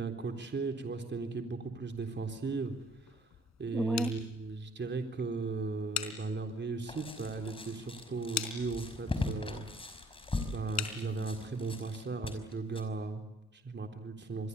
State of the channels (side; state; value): both; normal; correlation 0.59